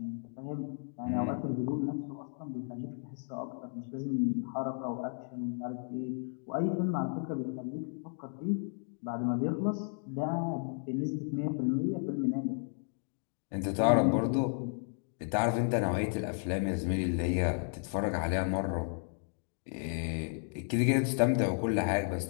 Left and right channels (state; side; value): silent; right; 55 dB below the other